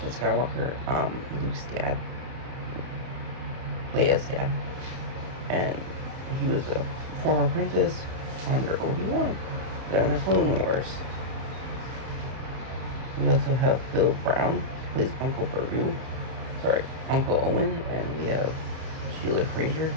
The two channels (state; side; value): late; left; 31 ms